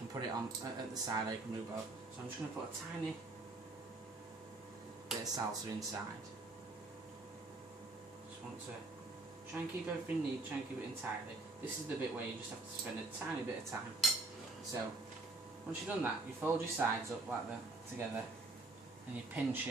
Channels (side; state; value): left; quieter; 3.1 dB